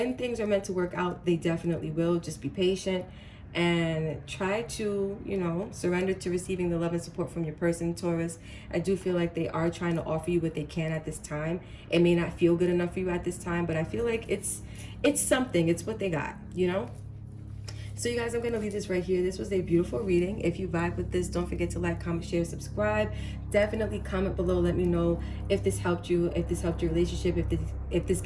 things are meant to work out, they definitely will. Just be patient and try to, you know, surrender to receiving the love and support from your person, Taurus. I do feel like they are trying to offer you what they can at this time. It may not feel good enough for you at this time, but I feel like it's something. It's what they got, you know? So you guys, I'm going to leave this right here. This was a beautiful reading. If you vibe with this, don't forget to like, comment, share, subscribe. Definitely comment below. Let me know if this helped you, if this helped your relationship, if this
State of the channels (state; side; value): identical; both; correlation 1.00